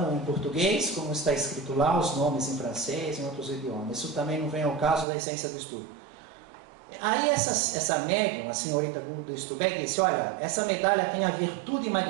em português, como está escrito lá, os nomes em francês, em outros idiomas. Isso também não vem ao caso da essência do estudo. Aí essa médium, a senhorita Guldenstubbe, disse, olha, essa medalha tem a virtude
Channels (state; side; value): drops out; left; at 5.1 s